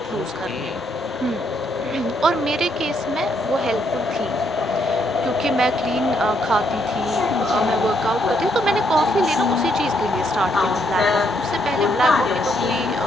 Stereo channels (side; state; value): both; normal; correlation 0.74